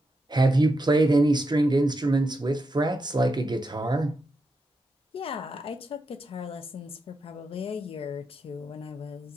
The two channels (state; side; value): normal; both; correlation 0.85